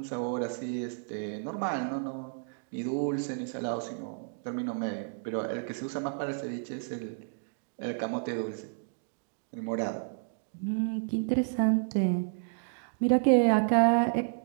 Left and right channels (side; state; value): left; silent; digital silence